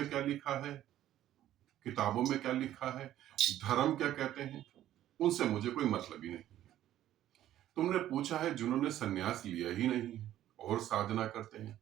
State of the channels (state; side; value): quieter; left; 12.7 dB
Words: क्या लिखा है, किताबों में क्या लिखा है, धर्म क्या कहते हैं, उनसे मुझे कोई मतलब ही नहीं है। तुमने पूछा है जिन्होंने सन्यास लिया ही नहीं है और साधना करते हैं,